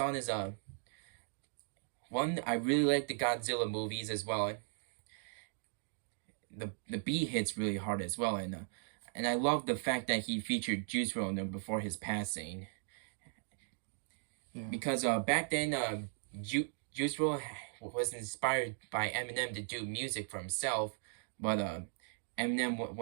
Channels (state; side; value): silent; left; digital silence